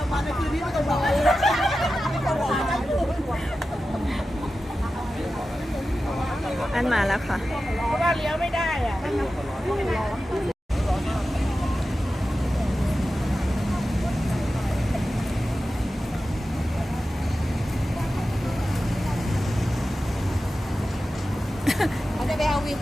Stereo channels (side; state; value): both; normal; correlation 0.93